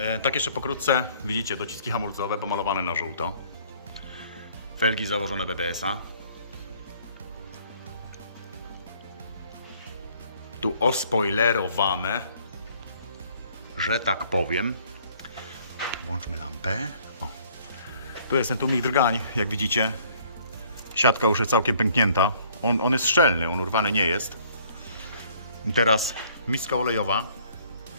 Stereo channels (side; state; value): both; inverted; correlation -0.60